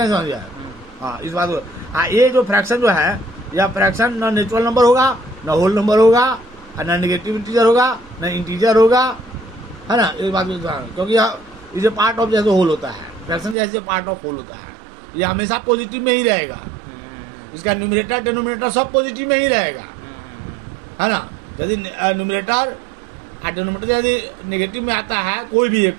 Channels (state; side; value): drops out; left; at 13.6 s